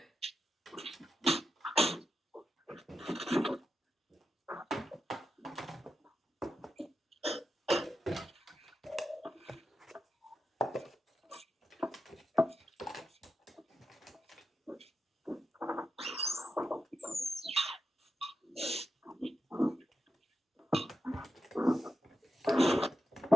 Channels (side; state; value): both; normal; correlation 0.88